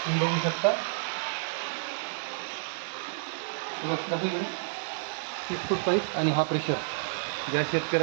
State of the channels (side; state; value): left; silent; 58 dB below the other